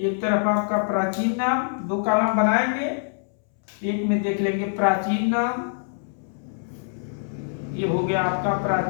तरफ आपका प्राचीन नाम, 2 कॉलम बनाएंगे, एक में देख लेंगे प्राचीन नाम। ये हो गया आपका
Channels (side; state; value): right; silent; 62 dB below the other